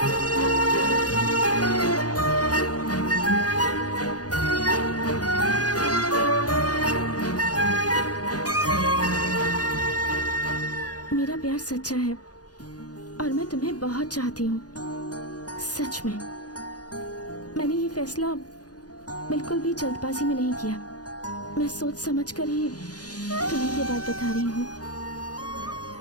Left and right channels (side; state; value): right; late; 0.68 ms